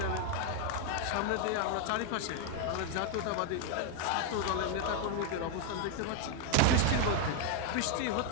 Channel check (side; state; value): both; different; correlation 0.01